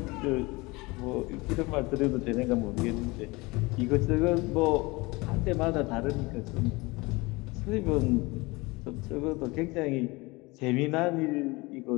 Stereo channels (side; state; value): right; quieter; 23.9 dB